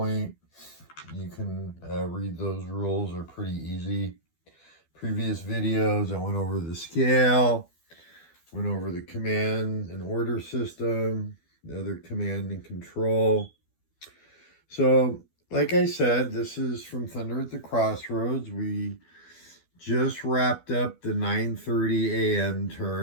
you can read those rules. They're pretty easy. Previous videos, I went over the scale, went over the command and order system, the other command and control. So, like I said, this is from Thunder at the Crossroads. We just wrapped up the 9:30 a.m.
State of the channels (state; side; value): late; right; 12 ms